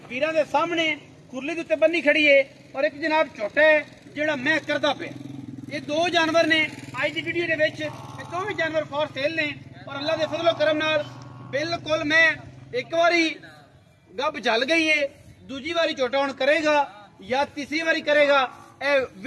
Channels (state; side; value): identical; both; correlation 1.00